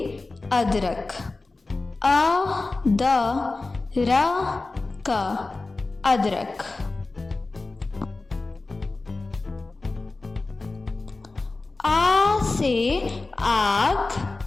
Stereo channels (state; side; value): quieter; right; 3.4 dB